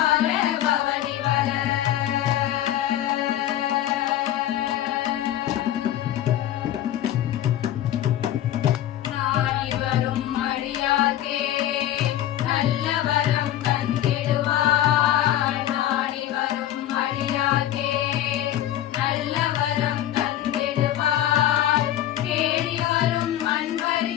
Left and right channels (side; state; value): right; quieter; 12.4 dB